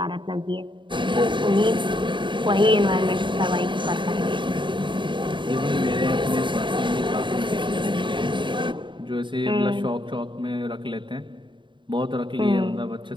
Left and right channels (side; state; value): left; late; 0.23 ms